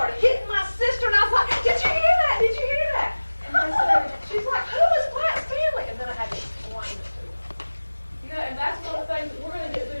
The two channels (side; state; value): both; inverted; correlation -1.00